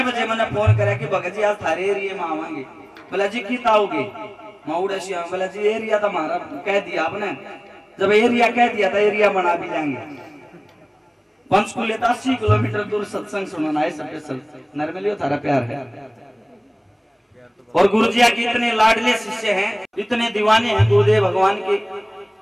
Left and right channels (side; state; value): both; identical; correlation 1.00